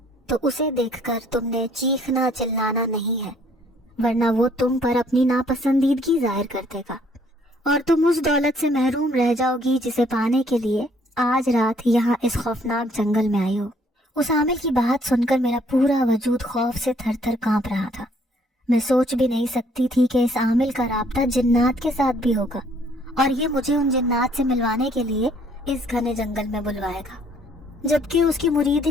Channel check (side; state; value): both; normal; correlation 0.63